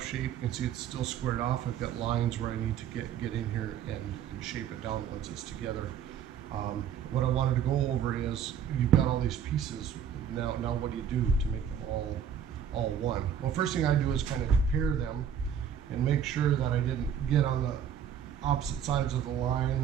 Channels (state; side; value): quieter; left; 8.5 dB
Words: shape. You can see it's still squared off. I've got lines where I need to get in here and shape it down once it's together. What I wanted to go over is, you've got all these pieces. Now what do you do to make them all one? Well, first thing I do is kind of compare them and make sure that I didn't get on the opposite sides of the line,